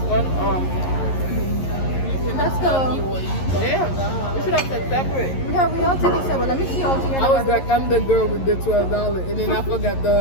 fun. Let's go. Yeah, we should have said separate. Yeah, we all take each other. Let me see all together. I was like, I'm the girl with the $12, and then I forgot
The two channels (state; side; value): late; right; 11 ms